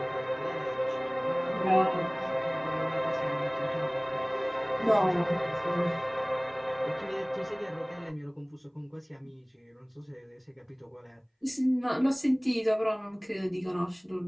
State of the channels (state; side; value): identical; both; correlation 1.00